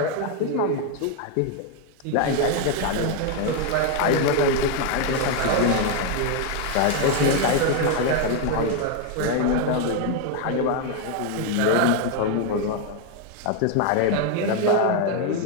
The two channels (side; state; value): both; different; correlation 0.01